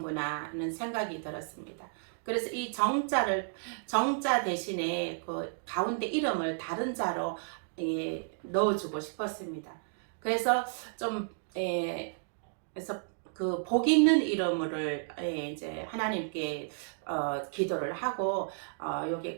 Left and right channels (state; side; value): silent; left; digital silence